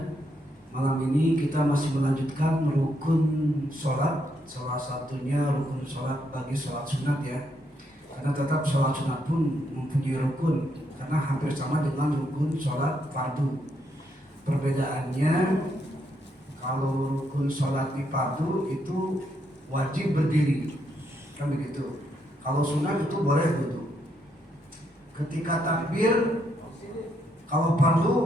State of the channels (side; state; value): both; normal; correlation 0.77